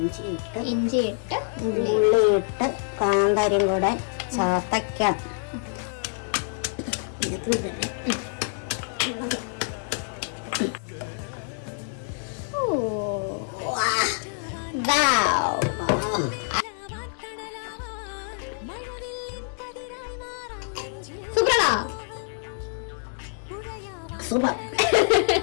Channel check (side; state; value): right; silent; digital silence